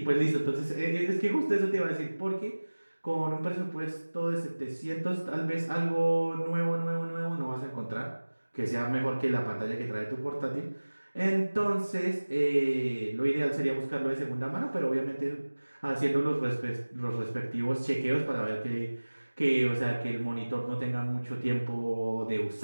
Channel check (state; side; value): inverted; both; correlation -1.00